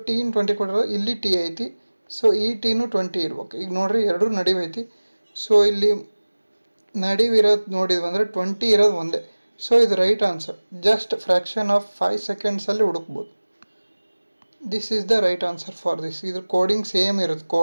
ಟೀನ್ 20 ಕೊಟ್ಟಿರೋ, ಇಲ್ಲಿ ಟಿ ಐತಿ. ಸೊ ಈ ಟೀನು 20 ಇರ್ಬೇಕು. ಈಗ ನೋಡಿರಿ ಎರಡೂ ನಡಿವೈತಿ. ಸೊ ಇಲ್ಲಿ ನಡಿವಿರೋದು ನೋಡಿದ್ವಿ ಅಂದರೆ 20 ಇರೋದು ಒಂದೇ. ಸೊ ಇದು right answer. Just fraction of 5 ಸೆಕೆಂಡ್ಸಲ್ಲಿ ಹುಡುಕ್ಬೋದು. This is the right answer for this. ಇದ್ರ ಕೋಡಿಂಗ್ ಸೇಮ್ ಇರುತ್ತೆ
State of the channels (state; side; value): inverted; both; correlation -1.00